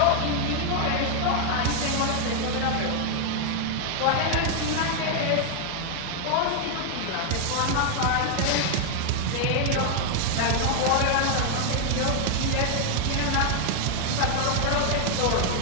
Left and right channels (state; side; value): different; both; correlation 0.00